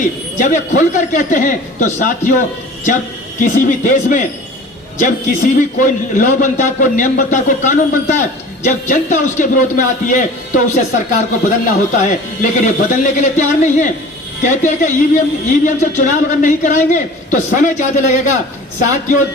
जब ये खुलकर कहते हैं, तो साथियों जब किसी भी देश में, जब किसी भी कोई लॉ बनता है, कोई नियम बनता है, कोई कानून बनता है, जब जनता उसके विरोध में आती है तो उसे सरकार को बदलना होता है। लेकिन ये बदलने के लिए तैयार नहीं है। कहते हैं कि ईवीएम से चुनाव अगर नहीं कराएंगे तो समय ज्यादा लगेगा। साथियों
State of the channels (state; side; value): normal; both; correlation 0.42